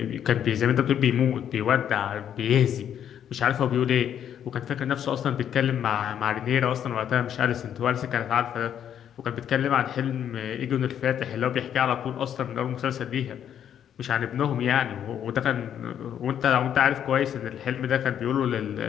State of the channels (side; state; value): right; quieter; 9.4 dB